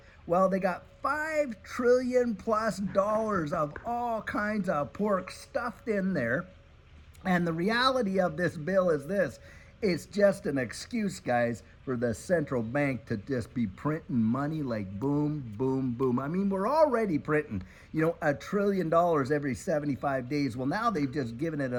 Well, they got $5 trillion plus of all kinds of pork stuffed in there. And the reality of this bill is this. It's just an excuse, guys, for the central bank to just be printing money like boom. I mean, we're already printing, $1 trillion every 75 days. Well, now they've just given it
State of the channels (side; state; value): both; identical; correlation 1.00